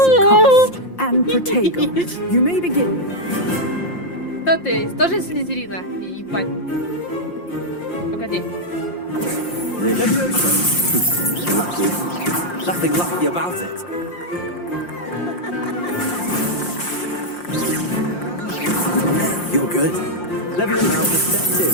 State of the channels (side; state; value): right; late; 5.7 ms